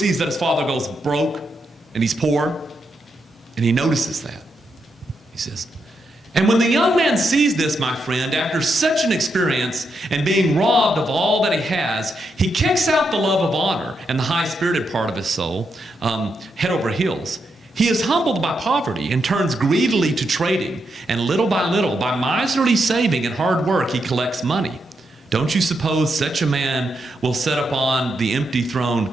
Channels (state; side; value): normal; both; correlation 0.82